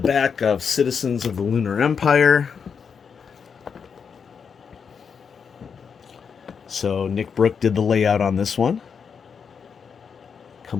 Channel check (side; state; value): right; quieter; 6.4 dB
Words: of Citizens of the Lunar Empire. So Nick Brook did the layout on this one.